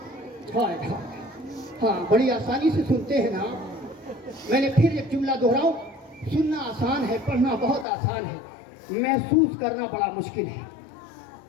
ہاں، بڑی آسانی سے سنتے ہیں نا، میں نے پھر ایک جملہ دہراؤں، سننا آسان ہے، پڑھنا بہت آسان ہے۔ محسوس کرنا بڑا مشکل ہے۔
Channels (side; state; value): right; drops out; at 7.9 s